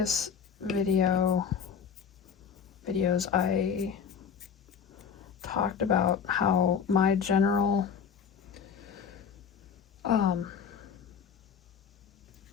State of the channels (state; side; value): quieter; right; 7.0 dB